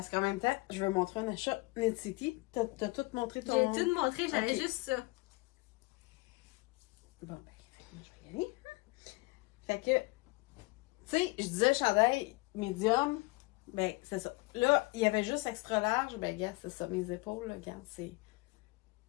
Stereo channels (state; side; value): quieter; right; 24.7 dB